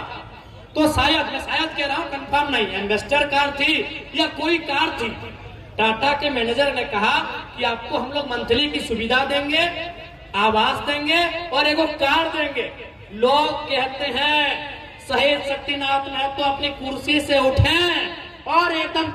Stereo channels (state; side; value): identical; both; correlation 1.00